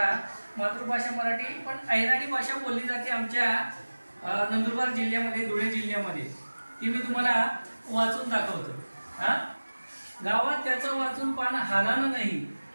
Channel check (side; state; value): both; inverted; correlation -1.00